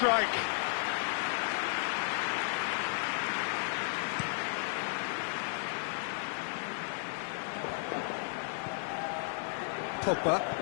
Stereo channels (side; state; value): right; silent; 55 dB below the other